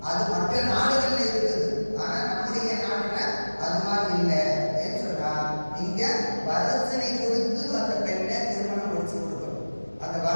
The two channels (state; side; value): inverted; both; correlation -1.00